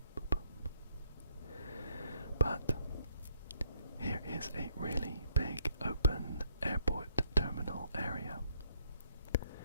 boop, boop. But here is a really big open airport terminal area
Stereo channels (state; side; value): inverted; both; correlation -0.69